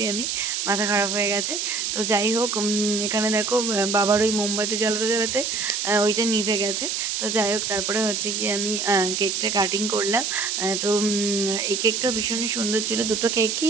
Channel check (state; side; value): noise; right; hiss, 1 dB below the sound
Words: আমি, মাথা খারাপ হয়ে গেছে। তো যাই হোক, এখানে দেখো বাবার ওই মোমবাতি জ্বালাতে জ্বালাতে ওইটা নিভে গেছে। তো যাই হোক, তারপরে হচ্ছে কি আমি কেকটা কাটিং করলাম। তো এই কেকটা ভীষণই সুন্দর ছিল। দুটো